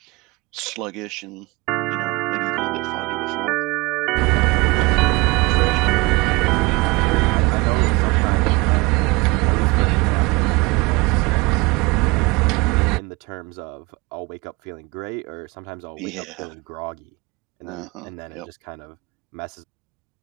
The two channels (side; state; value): left; quieter; 24.9 dB